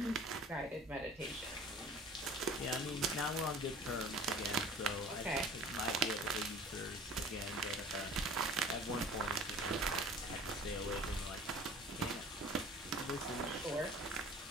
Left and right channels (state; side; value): normal; both; correlation 0.45